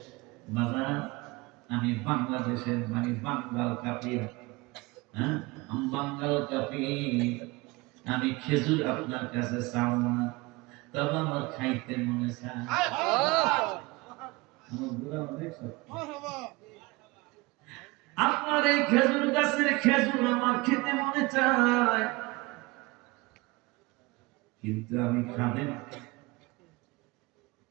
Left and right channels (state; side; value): quieter; left; 23.4 dB